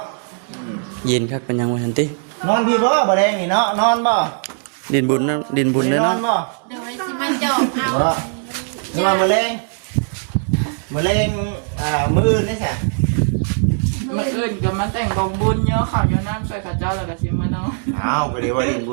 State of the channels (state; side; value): silent; left; 66 dB below the other